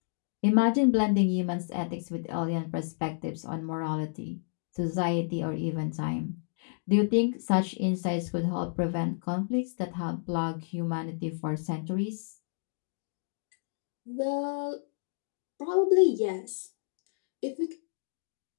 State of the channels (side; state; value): right; silent; digital silence